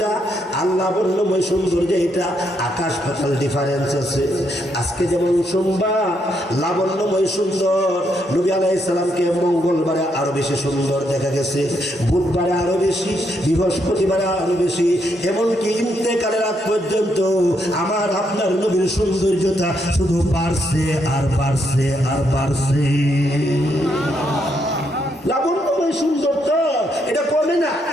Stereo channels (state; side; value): normal; both; correlation 0.77